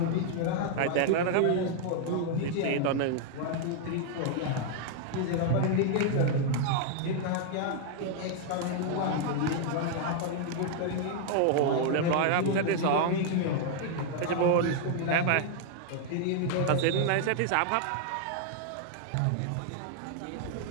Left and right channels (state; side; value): different; both; correlation 0.00